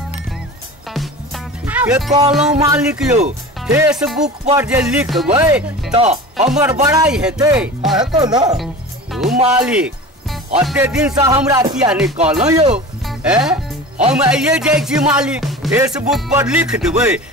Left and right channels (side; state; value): both; normal; correlation 0.34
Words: के कहलौं मालिक यो फेसबुक पर जे लिखबै तो हमर बड़ाई हेतै। हेतौ ना मालिक अते दिन से हमरा किया नहीं कहलौं यो? हम आइए जाइ छी मालिक, फेसबुक पर लिख देबै